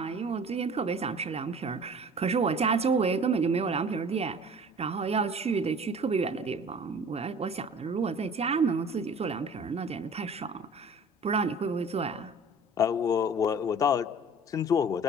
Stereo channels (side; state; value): both; normal; correlation 0.45